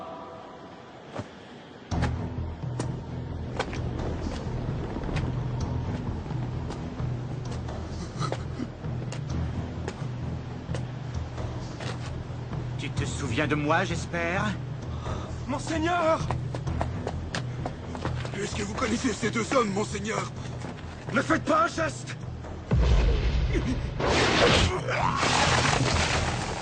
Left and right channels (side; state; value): both; identical; correlation 1.00